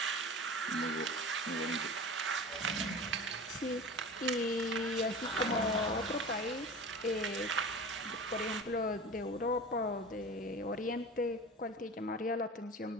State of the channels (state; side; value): normal; both; correlation 0.35